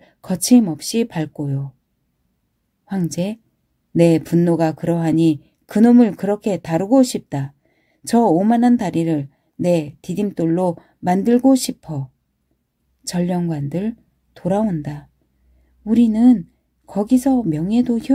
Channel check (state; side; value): identical; both; correlation 1.00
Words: 거침없이 밟고요. 황제, 내 분노가 그러하니 그놈을 그렇게 다루고 싶다. 저 오만한 다리를 내 디딤돌로 만들고 싶어. 전령관들 돌아온다. 우리는 거기서 명예도